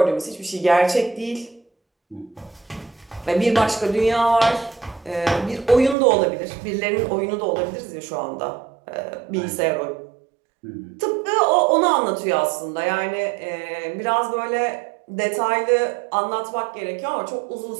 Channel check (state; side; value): drops out; left; at 6.0 s